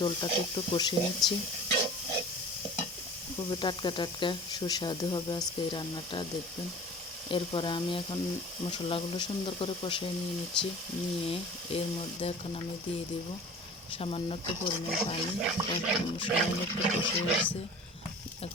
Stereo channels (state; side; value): normal; both; correlation 0.41